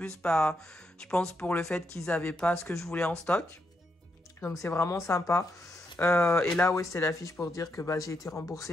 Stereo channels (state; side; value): normal; both; correlation 0.80